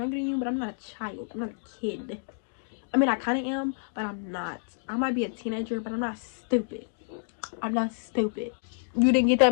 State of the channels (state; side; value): silent; right; digital silence